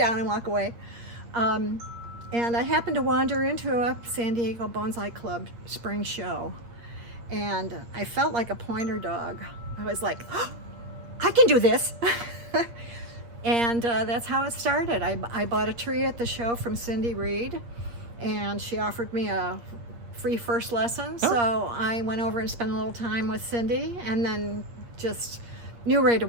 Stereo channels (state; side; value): late; left; 8.5 ms